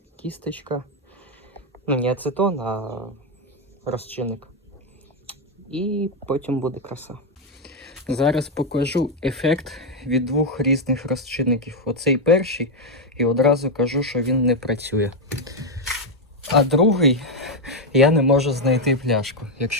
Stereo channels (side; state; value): both; normal; correlation 0.03